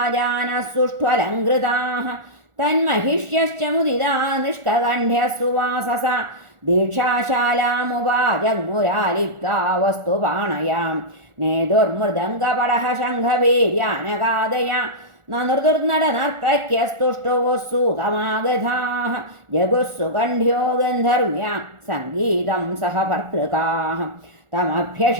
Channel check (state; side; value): late; left; 1.4 ms